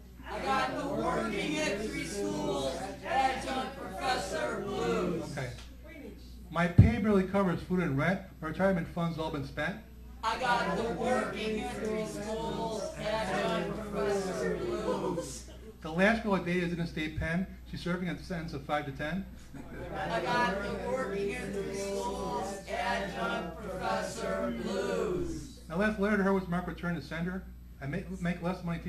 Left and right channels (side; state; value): both; identical; correlation 1.00